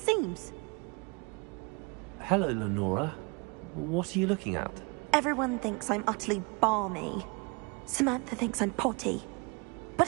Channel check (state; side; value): quieter; left; 30.4 dB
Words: Hello, Lenora. What are you looking at? Everyone thinks I'm utterly balmy. Samantha thinks I'm potty.